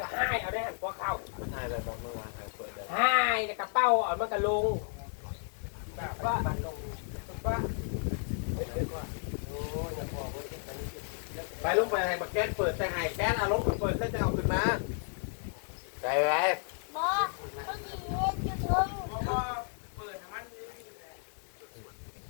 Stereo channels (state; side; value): silent; right; 56 dB below the other